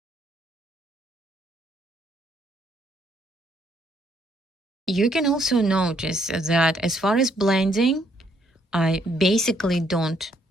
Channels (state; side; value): normal; both; correlation 0.70